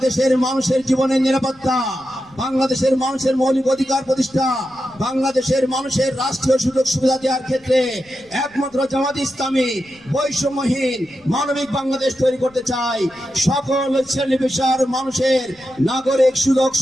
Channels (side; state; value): left; noise; rumble, 29 dB below the sound